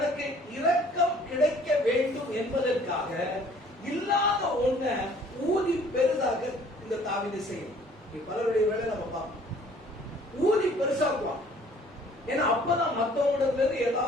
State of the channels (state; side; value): normal; both; correlation 0.56